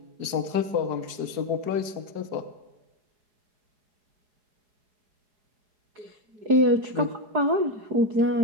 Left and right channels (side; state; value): left; late; 4.8 ms